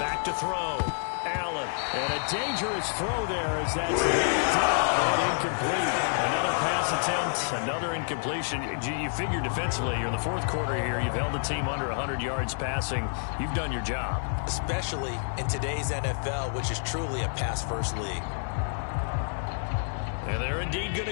Back to throw. Allen. And a dangerous throw there as that's knocked down and incomplete. Another pass attempt, another incompletion. You figure defensively, you're in the fourth quarter here. You've held the team under 100 yards passing. You've done your job. Especially in today's NFL, which is truly a pass-first league. And they're indeed going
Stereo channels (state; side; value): silent; right; 59 dB below the other